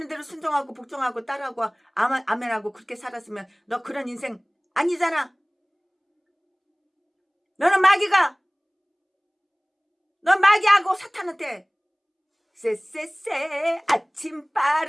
대로 순종하고 복종하고 따라하고 아멘하고 그렇게 살았으면 너 그런 인생 아니잖아. 넌 마귀하고 사탄한테 쎄쎄쎄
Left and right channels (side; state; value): both; identical; correlation 1.00